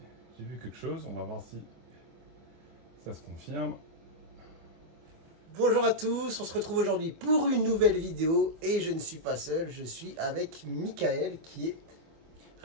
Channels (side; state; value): left; late; 24 ms